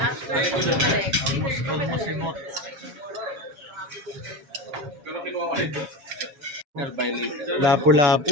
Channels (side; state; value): left; late; 7.2 ms